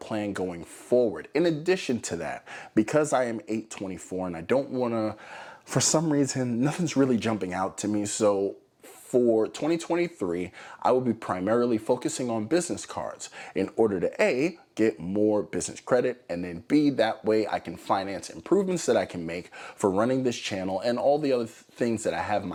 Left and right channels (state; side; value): identical; both; correlation 1.00